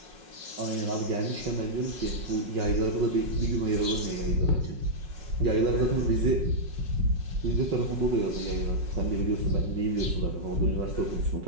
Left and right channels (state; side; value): late; left; 5.5 ms